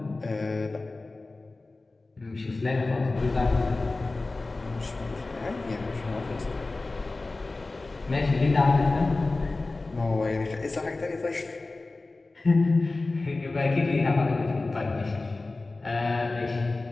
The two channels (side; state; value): right; quieter; 3.3 dB